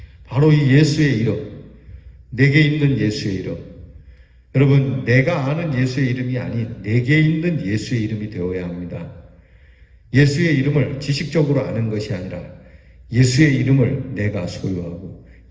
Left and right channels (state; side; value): identical; both; correlation 1.00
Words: 바로 이 예수의 이름, 내게 있는 예수의 이름. 여러분, 내가 아는 예수의 이름이 아닌 내게 있는 예수의 이름이 되어야 합니다. 예수의 이름을 지식적으로 아는 것이 아니라 예수의 이름을 내가 소유하고